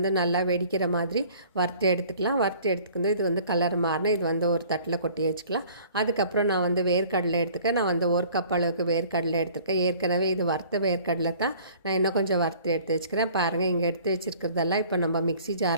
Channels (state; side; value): inverted; both; correlation -0.51